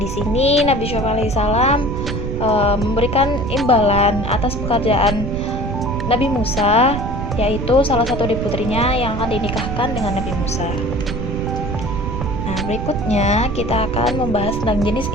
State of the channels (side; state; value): right; noise; rumble, 4 dB below the sound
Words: sini Nabi Syuaib alaihissalam memberikan imbalan atas pekerjaan Nabi Musa, yaitu salah satu dari putrinya yang akan dinikahkan dengan Nabi Musa. Nah, berikutnya kita akan membahas tentang jenis